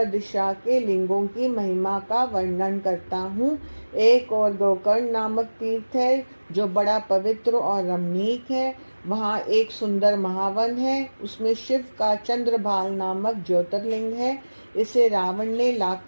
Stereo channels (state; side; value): inverted; both; correlation -1.00